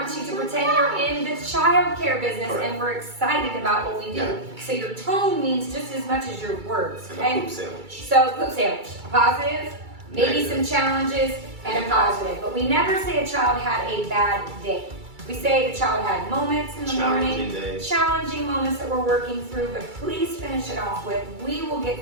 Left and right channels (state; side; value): late; left; 2.3 ms